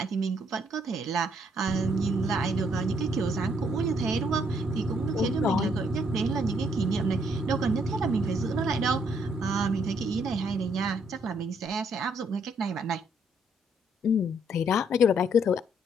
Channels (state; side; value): normal; both; correlation 0.69